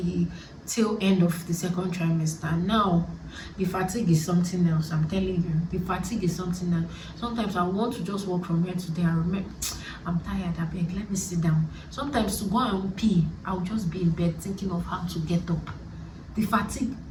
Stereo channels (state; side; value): identical; both; correlation 1.00